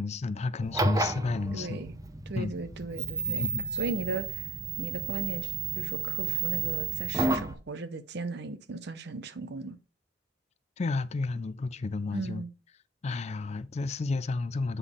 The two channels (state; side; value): normal; both; correlation 0.53